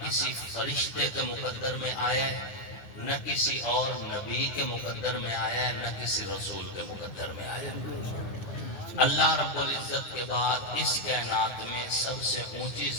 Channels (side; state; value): right; late; 9.5 ms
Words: کسی فرشتے کے مقدر میں آیا ہے، نہ کسی اور نبی کے مقدر میں آیا ہے، نہ کسی رسول کے مقدر میں آیا ہے۔ اللہ رب العزت کے بعد اس کائنات میں سب سے اونچی